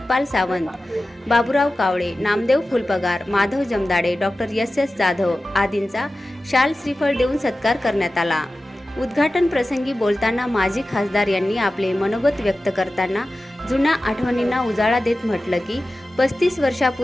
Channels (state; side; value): normal; both; correlation 0.95